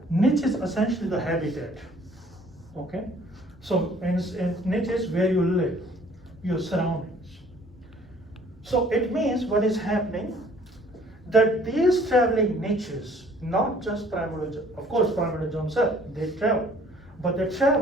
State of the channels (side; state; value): both; normal; correlation 0.56